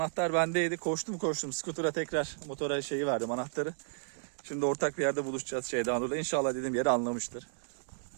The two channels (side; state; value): left; silent; digital silence